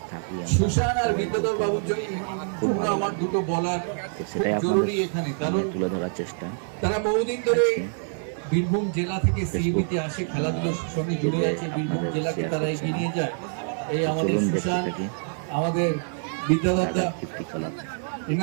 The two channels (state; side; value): silent; left; digital silence